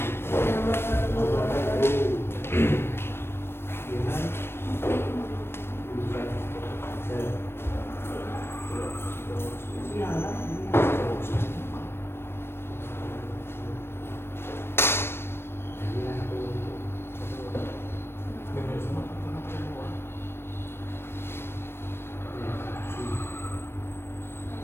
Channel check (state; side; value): late; right; 0.12 ms